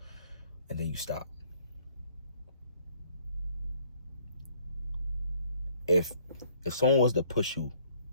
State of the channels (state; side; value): inverted; both; correlation -0.61